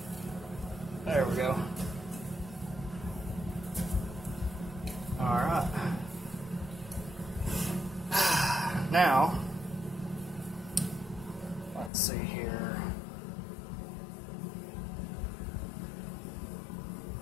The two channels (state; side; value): drops out; right; at 11.9 s